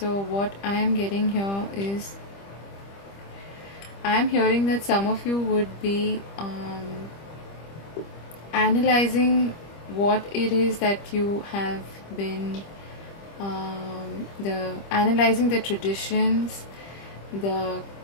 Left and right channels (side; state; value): right; late; 25 ms